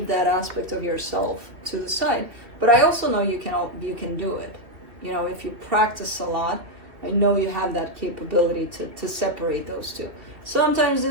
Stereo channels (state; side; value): late; left; 2.6 ms